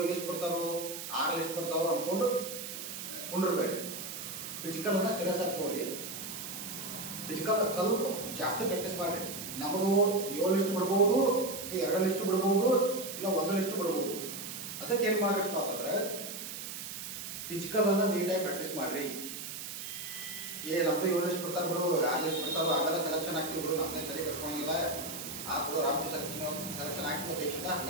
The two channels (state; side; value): noise; right; hiss, 8 dB below the sound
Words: ಲಿಸ್ಟ್ ಬಿಡ್ತಾರೋ 6 ಲಿಸ್ಟ್ ಬಿಡ್ತಾರೋ ಅಂದ್ಕೊಂಡು ಕುಂಡಿರ್ಬೇಡ್ರಿ. ಫಿಸಿಕಲನ್ನು ಸೀರಿಯಸ್ ಆಗಿ ತಗೋರಿ. ಫಿಸಿಕಲ್ ಸ್ವಲ್ಪ ಜಾಸ್ತಿ ಪ್ರಾಕ್ಟೀಸ್ ಮಾಡಿರಿ. ನಮ್ಮದು 7 ಲಿಸ್ಟ್ ಬಿಡ್ಬೋದು, 2 ಲಿಸ್ಟ್ ಬಿಡ್ಬೋದು, ಇಲ್ಲ 1 ಲಿಸ್ಟ್ ಬಿಡ್ಬೋದು. ಅದಕ್ಕೆ ಏನು ಮಾಡ್ರಿಪ್ಪ ಅಂತಂದ್ರೆ ಫಿಸಿಕಲನ್ನು ನೀಟಾಗಿ ಪ್ರಾಕ್ಟೀಸ್ ಮಾಡಿರಿ. ನಮ್ಮದು 7 ಲಿಸ್ಟ್ ಬಿಡ್ತಾರೆ ಬಿಡು, 6 ಲಿಸ್ಟ್ ಬಿಡ್ತಾರೋ ಆಮೇಲೆ ಸೆಲೆಕ್ಷನ್ ಆಗ್ತೀವಿ ಬಿಡು, ನಮ್ಮದೇ ತಲೆ ಕೆಡ್ಸ್ಕೊಳಂಗಿಲ್ಲ, ಬಿಡು ರಾಮ್ಜಿ ಸೆಲೆಕ್ಷನ್ ಆಗ್ತೀವಿ ದೇಶದಿಂದ